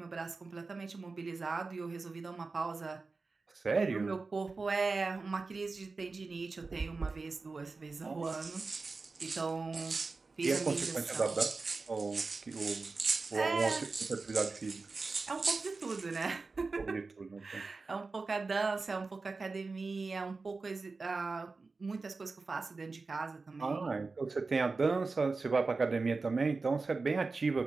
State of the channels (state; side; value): quieter; left; 4.0 dB